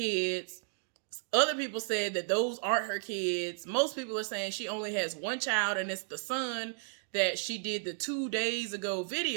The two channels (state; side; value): silent; left; digital silence